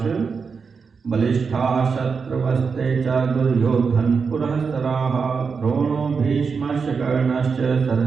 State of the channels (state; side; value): quieter; left; 5.4 dB